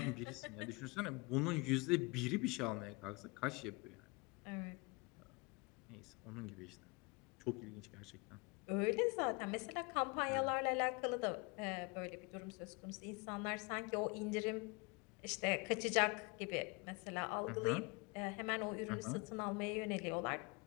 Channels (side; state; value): right; quieter; 28.2 dB